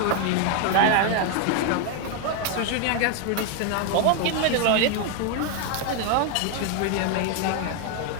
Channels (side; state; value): both; different; correlation 0.01